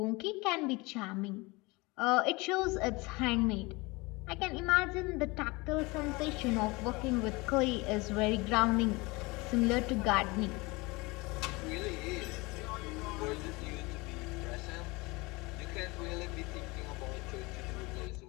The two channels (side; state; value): right; quieter; 24.4 dB